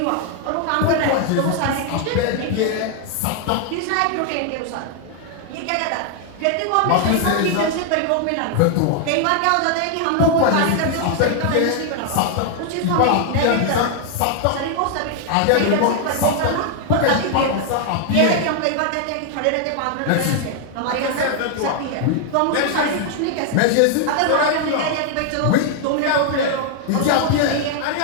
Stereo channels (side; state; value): both; different; correlation 0.00